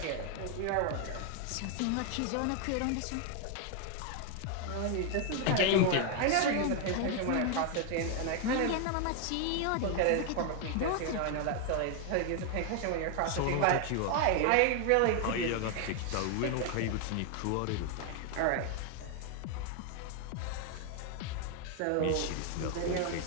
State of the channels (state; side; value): different; both; correlation 0.00